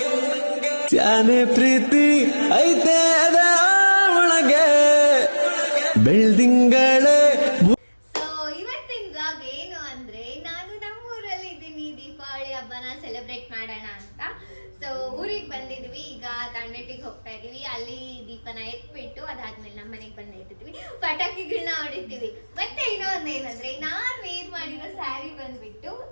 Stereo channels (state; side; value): inverted; both; correlation -1.00